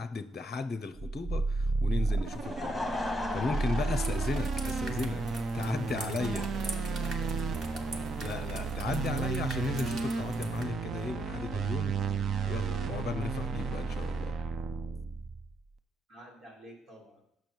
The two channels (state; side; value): normal; both; correlation 0.77